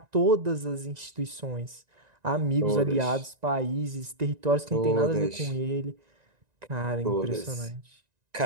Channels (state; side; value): late; left; 1.9 ms